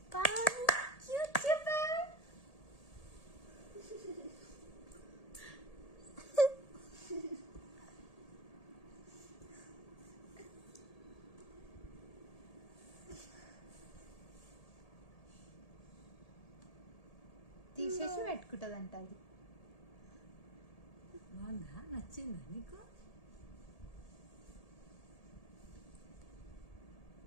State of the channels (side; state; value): right; late; 1.8 ms